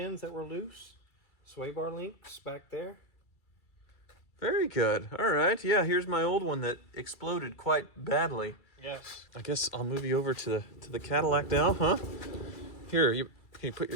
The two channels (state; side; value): late; right; 2.3 ms